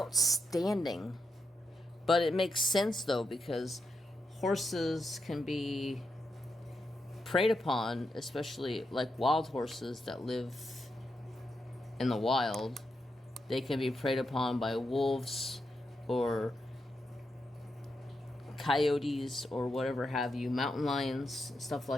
But it makes sense though, because horses can be preyed upon, especially like wild horses that live in the wild. They can be preyed upon by wolves or coyotes or whatever have you, mountain lions, stuff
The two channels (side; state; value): both; normal; correlation 0.84